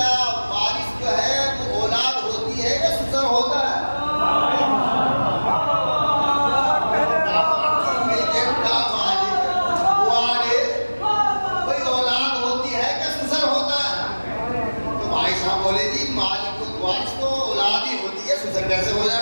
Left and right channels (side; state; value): both; inverted; correlation -1.00